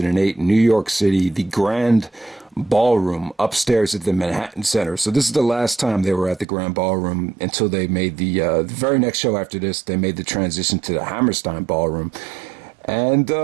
New York City, the Grand Ballroom upstairs at the Manhattan Center. So this is the last time they were at the Grand Ballroom until they made the very next show after this, they made the transition to the Hammerstein Ballroom. And,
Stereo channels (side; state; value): left; drops out; at 6.5 s